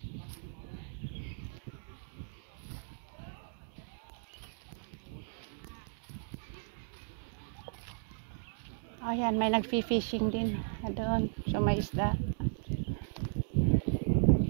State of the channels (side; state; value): left; silent; digital silence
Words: Ayan, may nag-fishing din doon. So, may isda.